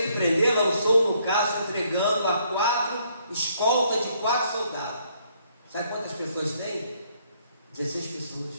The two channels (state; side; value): inverted; both; correlation -0.69